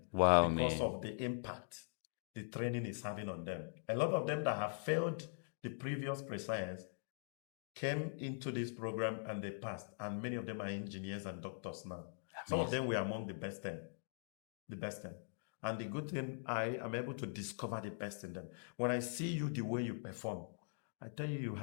Wow, because man. of the impact the training is having on them. A lot of them that have failed the previous pre-science came into this program and they passed, and many of them are engineers and doctors now. Some of them were among the best 10. The best 10. And the good thing, I am able to discover the best in them. When I see you, the way you perform, I tell you, you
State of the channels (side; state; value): right; silent; digital silence